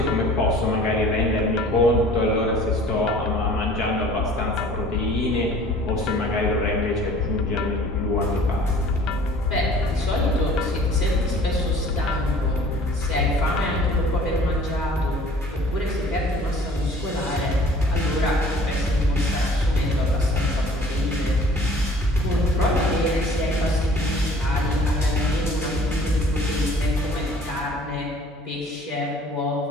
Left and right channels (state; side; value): normal; both; correlation 0.50